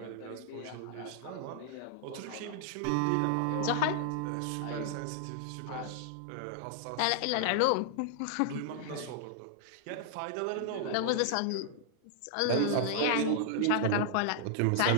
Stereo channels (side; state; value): both; different; correlation -0.01